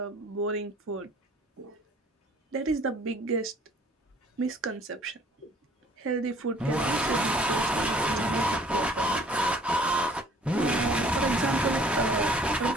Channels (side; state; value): both; normal; correlation 0.54